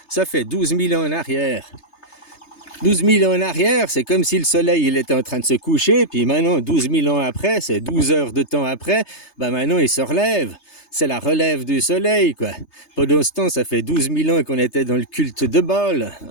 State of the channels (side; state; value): right; late; 3.3 ms